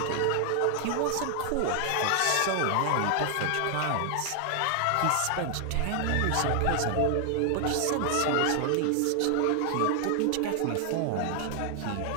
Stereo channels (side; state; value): both; different; correlation 0.00